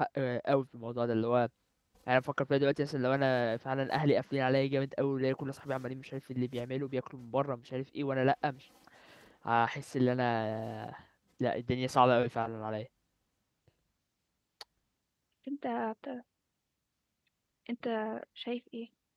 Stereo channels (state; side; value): identical; both; correlation 1.00